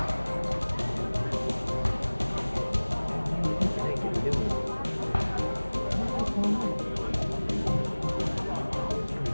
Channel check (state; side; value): inverted; both; correlation -1.00